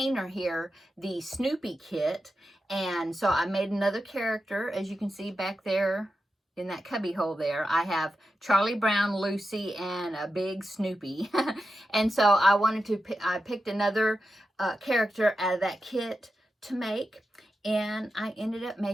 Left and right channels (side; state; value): both; normal; correlation 0.90